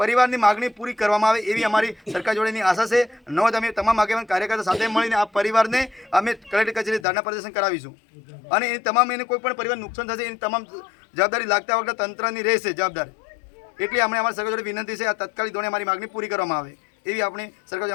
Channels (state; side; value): drops out; right; at 7.1 s